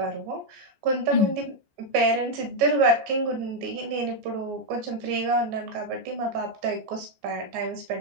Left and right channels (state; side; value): late; left; 14 ms